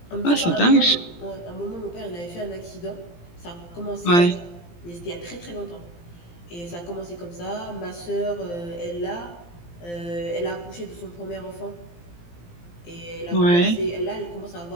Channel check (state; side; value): late; right; 17 ms